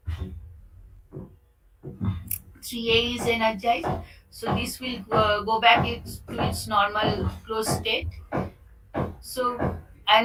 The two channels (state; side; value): identical; both; correlation 1.00